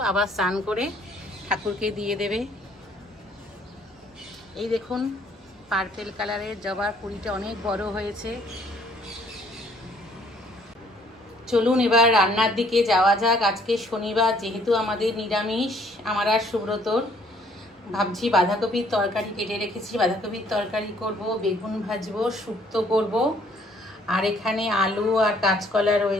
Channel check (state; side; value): normal; both; correlation 0.62